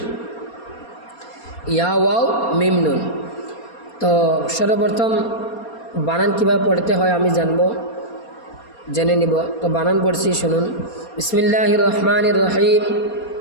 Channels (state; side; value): late; right; 4.3 ms